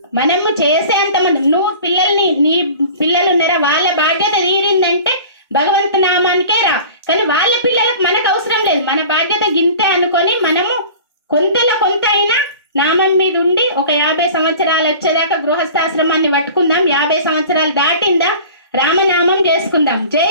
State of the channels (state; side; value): inverted; both; correlation -0.41